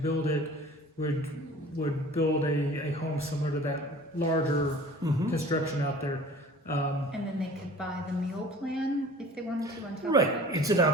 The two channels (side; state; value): both; normal; correlation 0.45